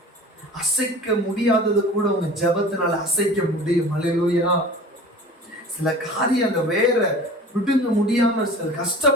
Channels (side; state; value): both; normal; correlation 0.40